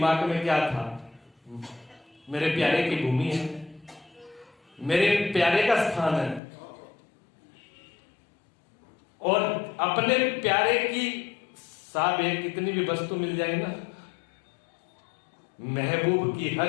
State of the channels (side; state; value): right; drops out; at 6.4 s